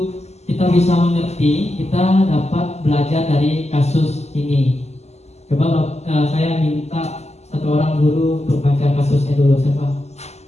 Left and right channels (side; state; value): right; late; 0.32 ms